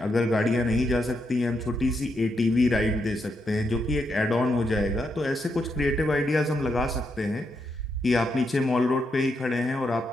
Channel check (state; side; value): normal; both; correlation 0.81